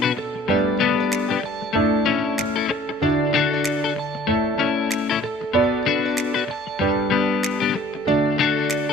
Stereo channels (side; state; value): both; normal; correlation 0.54